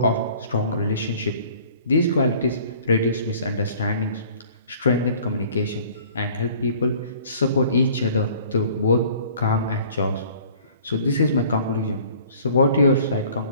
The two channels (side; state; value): both; inverted; correlation -0.52